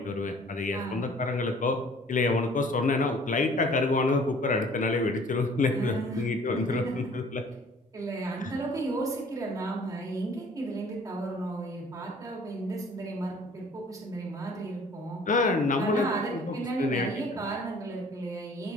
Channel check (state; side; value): normal; both; correlation 0.53